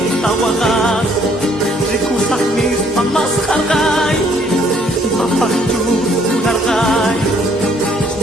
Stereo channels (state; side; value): normal; both; correlation 0.64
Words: wagas, rikusah mis pamas hargay, mapakju nargay,